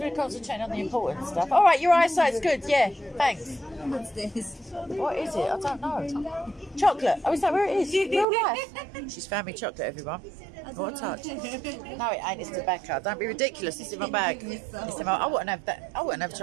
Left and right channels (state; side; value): drops out; left; at 8.2 s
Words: we're concentrating on the important stuff. All right, your eyesight's good. Yeah, thanks. What's this? What is it? I don't know. Chocolate. Oh, is that where it is? Real life. She's found me chocolate, everyone. What a touch. No, it ain't. It's tobacco. Don't be ridiculous. It's in my bag. It's in my, I wouldn't have that. I wouldn't have